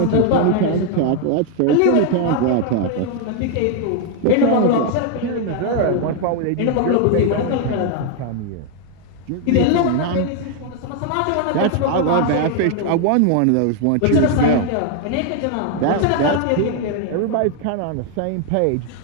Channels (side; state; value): both; different; correlation 0.00